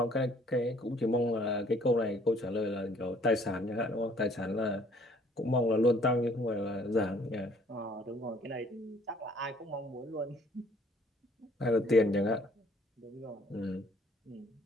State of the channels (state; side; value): normal; both; correlation 0.59